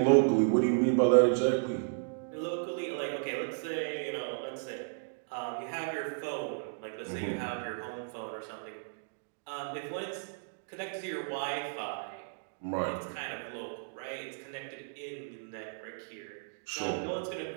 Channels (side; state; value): left; silent; digital silence